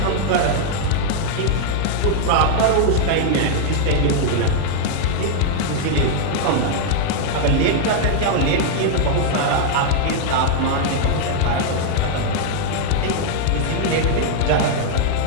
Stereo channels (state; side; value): different; both; correlation 0.00